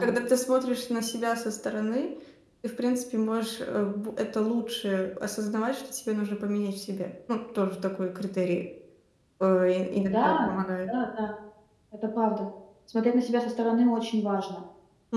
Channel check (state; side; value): identical; both; correlation 1.00